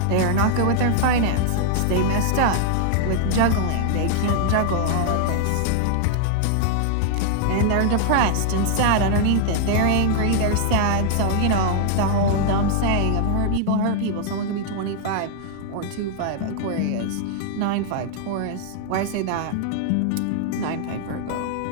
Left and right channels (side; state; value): both; different; correlation -0.01